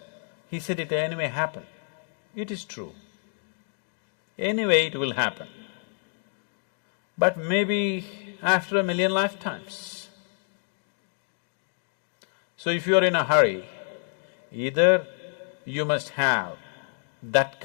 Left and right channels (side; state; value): right; silent; 56 dB below the other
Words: He said it anyway happen. It is true. Anyway it will happen. But maybe after 1,000,000 lifetimes. So if you're in a hurry, either you must have that